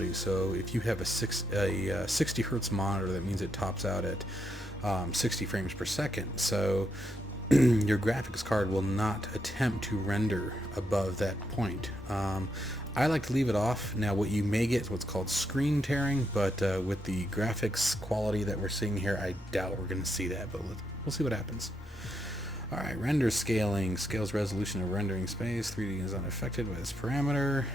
So if you have a 60 hertz monitor, that means it tops out at 60 frames per second. So your graphics card will not attempt to render above that point. I like to leave it off. Now what you may get is what's called screen tearing, but with the graphics quality that we're seeing here, I doubt we're going to see that, but we'll see what happens. Alright, render scaling. Scales resolution of rendering space. 3D is unaffected by this parameter.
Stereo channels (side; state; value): both; normal; correlation 0.80